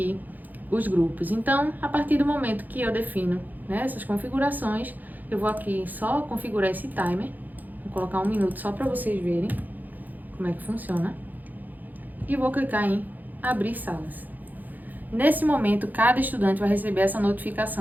os grupos. Então, a partir do momento que eu defino, né, essas configurações, eu vou aqui só configurar esse timer. Vou colocar 1 minuto só para vocês verem como é que funciona. E vou clicar em abrir salas. Nesse momento, cada estudante vai receber essa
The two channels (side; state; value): left; late; 0.084 ms